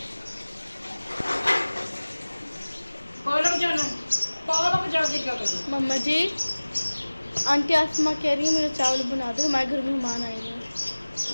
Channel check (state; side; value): inverted; both; correlation -1.00